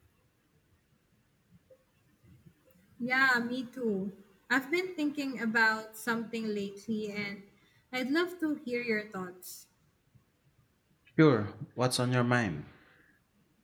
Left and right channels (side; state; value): both; identical; correlation 1.00